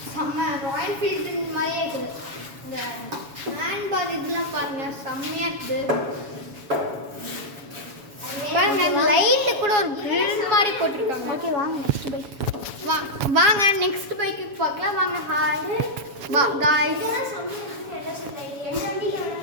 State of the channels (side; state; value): left; late; 7.2 ms